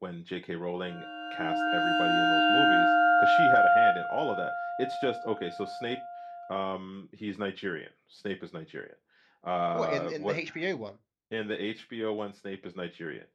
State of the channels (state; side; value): identical; both; correlation 1.00